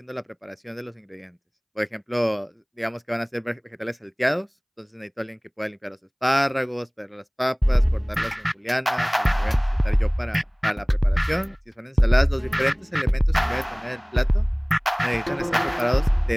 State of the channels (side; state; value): both; identical; correlation 1.00